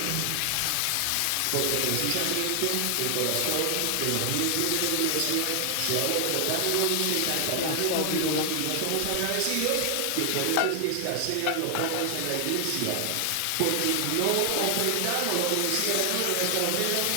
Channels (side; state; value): both; different; correlation 0.00